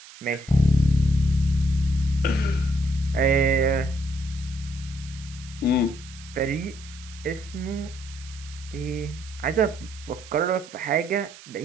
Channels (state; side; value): noise; right; hiss, 19 dB below the sound